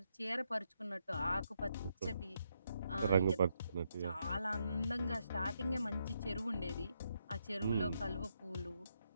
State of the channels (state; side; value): inverted; both; correlation -0.78